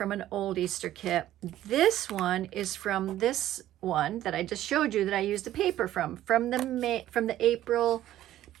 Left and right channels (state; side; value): quieter; left; 13.4 dB